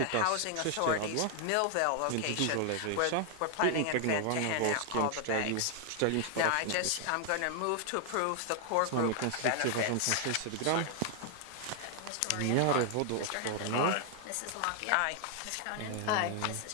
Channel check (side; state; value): both; different; correlation 0.00